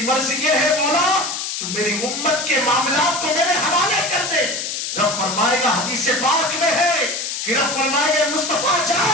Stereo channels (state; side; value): noise; left; hiss, 4 dB below the sound